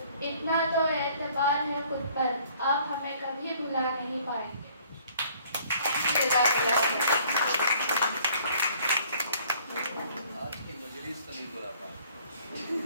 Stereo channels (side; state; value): both; inverted; correlation -0.58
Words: इतना तो एतबार है खुद पर, आप हमें कभी भुला नहीं पाएंगे। आज की मजलिस तो नहीं बुला पाए।